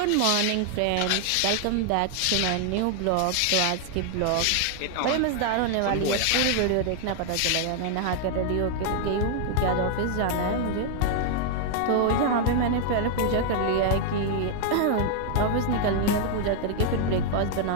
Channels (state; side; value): different; both; correlation 0.00